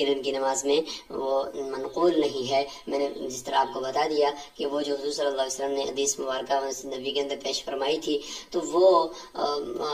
کی نماز میں وہ منقول نہیں ہے۔ میں نے جس طرح آپ کو بتا دیا کہ وہ جو حضور صلی اللہ علیہ وسلم نے حدیث مبارکہ نبی کے اندر پیش فرمائی تھی، تو وہ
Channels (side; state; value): both; identical; correlation 1.00